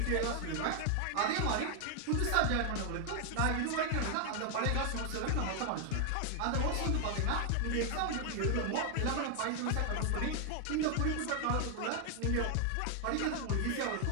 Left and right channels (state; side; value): different; both; correlation 0.00